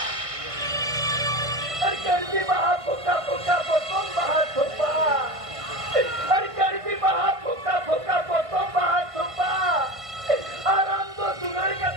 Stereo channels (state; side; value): late; left; 1.5 ms